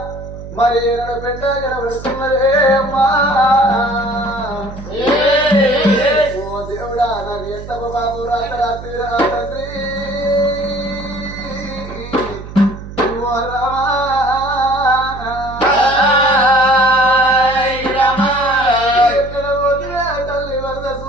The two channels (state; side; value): noise; right; hum, 12 dB below the sound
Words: మరి ఏనాడు పెంట కనబడుతున్నదే అమ్మా దేవుడా నాకు ఎంత బాబు రాత్రి తండ్రి ఎక్కడ పోతున్నా తల్లి వరద